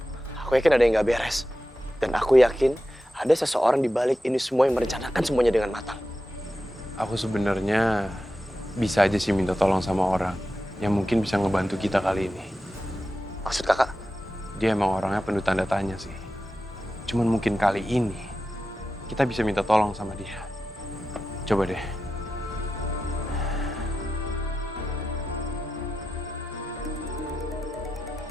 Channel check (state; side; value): normal; both; correlation 0.92